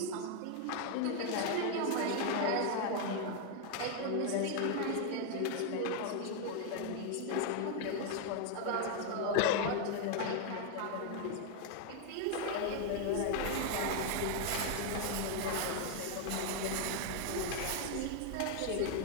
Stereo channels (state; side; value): different; both; correlation 0.00